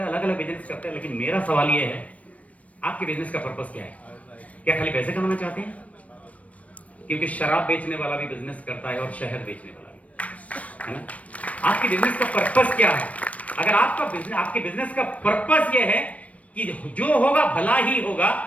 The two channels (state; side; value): late; right; 0.066 ms